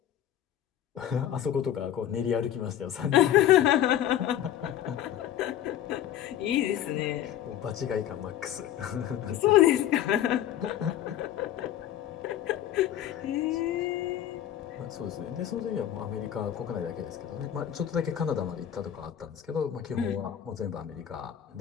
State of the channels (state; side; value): quieter; right; 11.2 dB